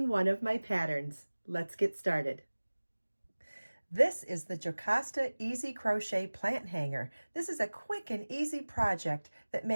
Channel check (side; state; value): both; inverted; correlation -1.00